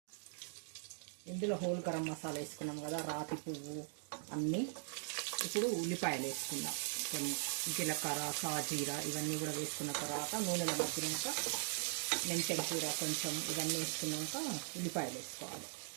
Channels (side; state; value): left; silent; digital silence